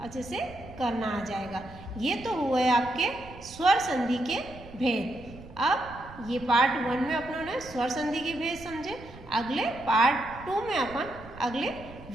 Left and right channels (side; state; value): right; noise; rumble, 17 dB below the sound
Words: अच्छे से करना आ जाएगा। ये तो हुए आपके स्वर संधि के भेद। अब ये पार्ट 1 में अपनों ने स्वर संधि के भेद समझे, अगले पार्ट 2 में अपन अगले